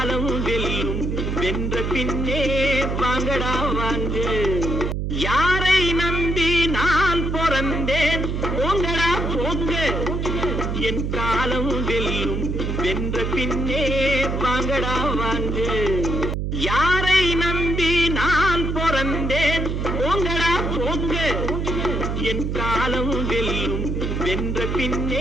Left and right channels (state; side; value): noise; right; hum, 1 dB below the sound